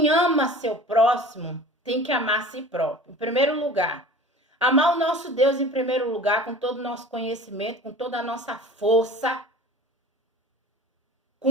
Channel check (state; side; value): normal; both; correlation 0.40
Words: ama seu próximo, tem que amar a si próprio. Em primeiro lugar, amar o nosso Deus em primeiro lugar, com todo o nosso conhecimento, com toda a nossa força,